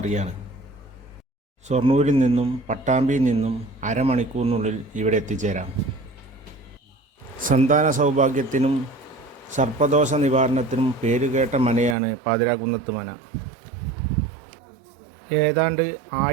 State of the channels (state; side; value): drops out; left; at 12.0 s